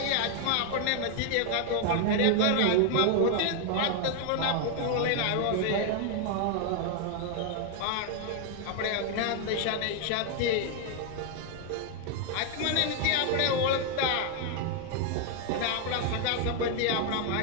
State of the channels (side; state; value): both; different; correlation 0.00